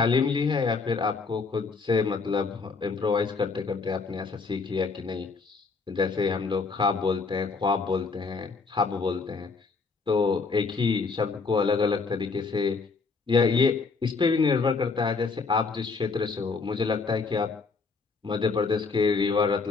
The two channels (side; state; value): right; quieter; 4.5 dB